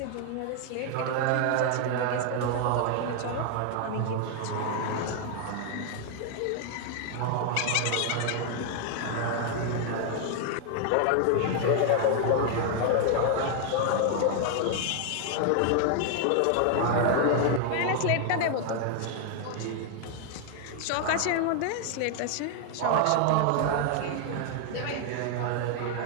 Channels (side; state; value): both; different; correlation 0.00